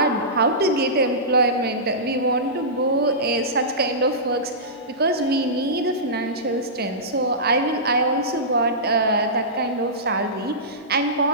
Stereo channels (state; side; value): normal; both; correlation -0.18